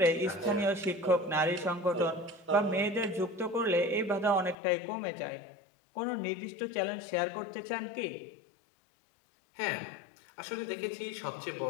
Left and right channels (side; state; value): right; drops out; at 4.5 s